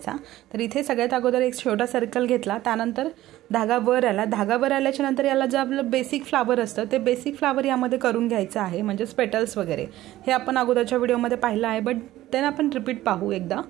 तर इथे सगळ्यात अगोदर एक छोटा सर्कल घेतला, त्यानंतर धागा वर आला. धागा वर आल्याच्या नंतर याला जे आपलं बेसिक फ्लावर असतं ते बेसिक फ्लावर यामध्ये करून घ्यायचं आहे, म्हणजेच पेटल्स वगैरे. हे आपण अगोदरच्या व्हिडिओमध्ये पाहिलं आहे, बट देन आपण रिपीट पाहू एकदा.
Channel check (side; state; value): left; quieter; 15.2 dB